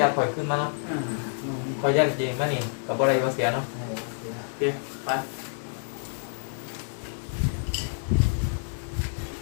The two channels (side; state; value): right; silent; digital silence